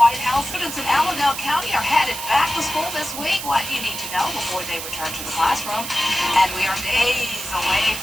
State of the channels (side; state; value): right; noise; hiss, 7 dB below the sound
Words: House. Students in Allendale County are headed back to school this week. What do you need to know before they return to the classroom? And we are days away